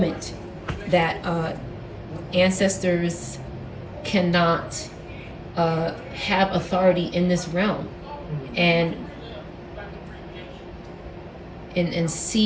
that ancestors cannot have authority in this realm and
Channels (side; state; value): both; identical; correlation 1.00